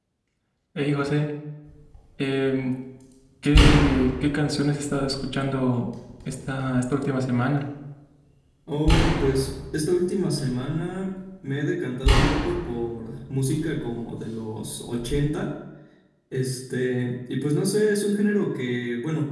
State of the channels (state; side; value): identical; both; correlation 1.00